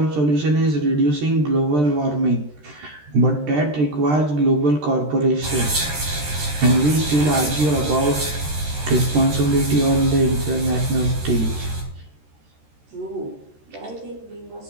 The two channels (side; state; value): left; late; 13 ms